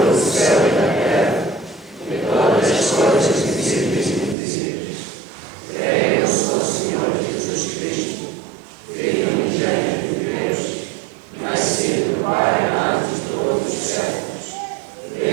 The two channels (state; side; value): drops out; left; at 4.4 s